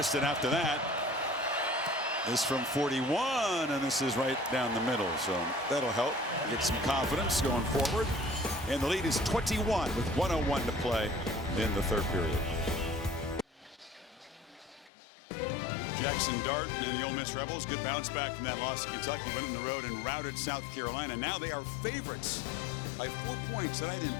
it after that. This from 41, and this is right down the middle. So that'll help get some confidence going forward. And the lead is 21 with 1:01 to play in the 3rd period. Jackson Dart and the Ole Miss Rebels, good bounce back from that loss to Kentucky. Went on the road and routed South Carolina. Now they are favorites by 4 points tonight in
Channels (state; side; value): drops out; right; at 14.9 s